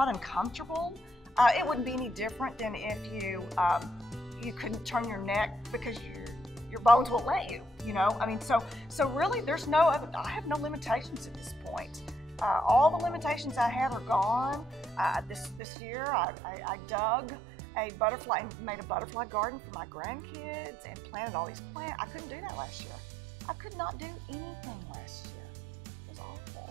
uncomfortable. It wouldn't be any different than if you couldn't turn your neck because your bones won't let you. You know, I mean, so really, there's no other. I have no limitations at this point. All the limitations I have are gone. This year, I dug a butterfly and made a butterfly garden for my grandkids and planted all these plants. I couldn't do that last year. I could not do anything last year. It was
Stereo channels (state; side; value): drops out; left; at 15.6 s